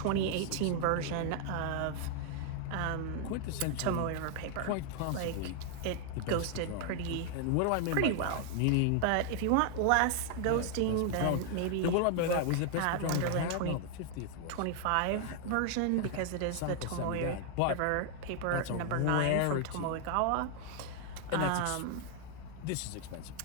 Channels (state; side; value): different; both; correlation 0.00